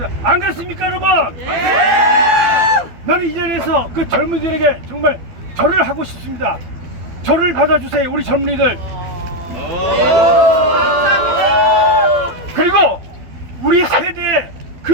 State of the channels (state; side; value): late; left; 12 ms